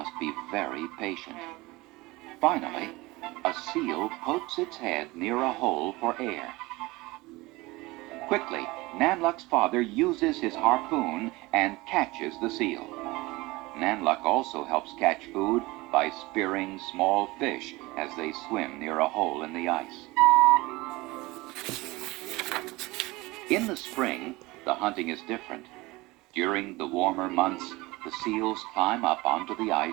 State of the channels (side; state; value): left; quieter; 21.7 dB